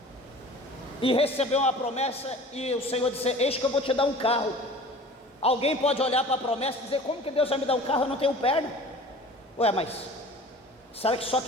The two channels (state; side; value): normal; both; correlation 0.42